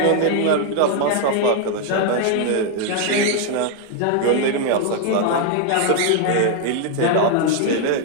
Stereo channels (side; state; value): both; different; correlation 0.00